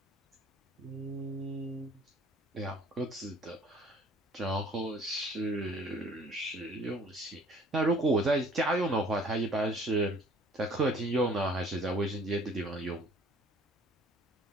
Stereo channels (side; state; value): both; normal; correlation 0.54